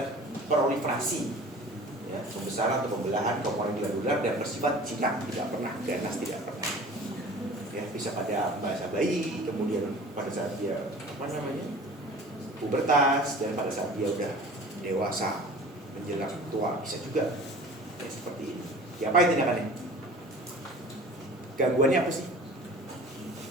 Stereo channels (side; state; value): both; normal; correlation 0.43